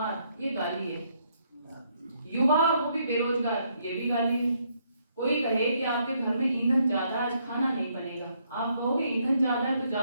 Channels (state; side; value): inverted; both; correlation -0.72